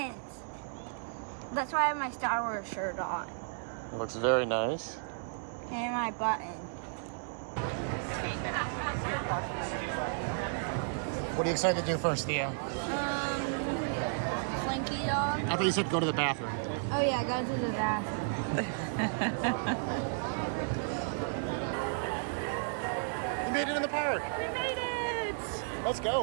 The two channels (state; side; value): silent; left; digital silence